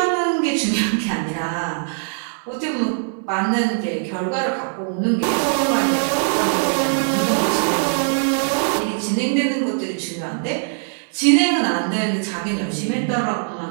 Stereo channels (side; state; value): left; silent; 65 dB below the other